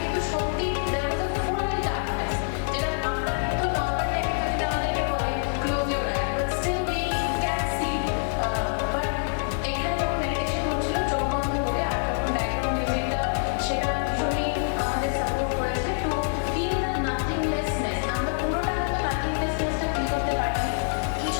কিন্তু সত্যি there was a full darkness, যেটা আমরা কিন্তু নর্মাল টাইমে যদি আমাদেরকে বলে close your eye, but still we can see, but এখানে যখন মেডিটেশন হচ্ছিল চোখ বন্ধ করে, আর যখন ব্যাকগ্রাউন্ড মিউজিকটা সেটা ভীষণই আমাদের সাপোর্ট করেছে টু ফিল দ্য নাথিংলেসনেস। আমরা পুরোটা হয়তো নাথিংলেসনেসটা ফিল করতে পারিনি,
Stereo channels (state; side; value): silent; right; digital silence